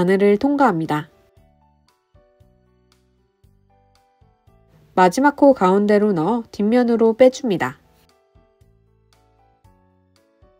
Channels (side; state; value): both; identical; correlation 1.00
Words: 통과합니다. 마지막 코 가운데로 넣어 뒷면으로 빼줍니다.